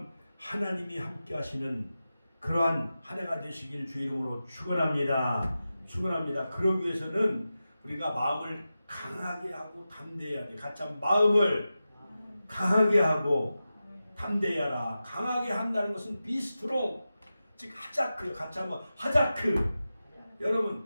하나님이 함께 하시는 그러한 한 해가 되시길 주의 이름으로 축원합니다. 축원합니다. 그러기 위해서는 우리가 마음을 강하게 하고 담대해야 돼. 같이 한번 마음을 강하게 하고 담대하라. 강하게 한다는 것은 be strong, 즉 하자크. 같이 한번 하자크.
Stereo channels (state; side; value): inverted; both; correlation -0.93